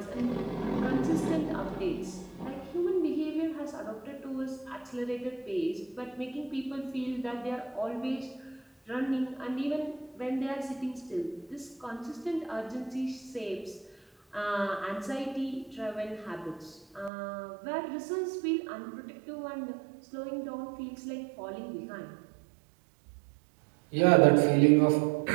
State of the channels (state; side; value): drops out; left; at 17.1 s